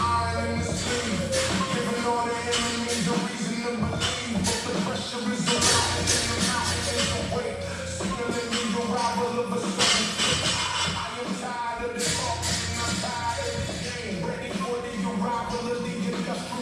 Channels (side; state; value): both; identical; correlation 1.00